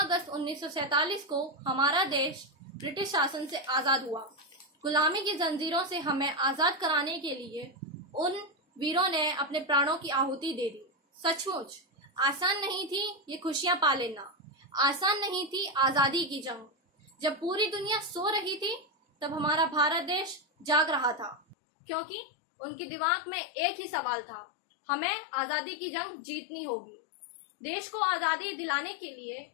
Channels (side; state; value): right; drops out; at 21.6 s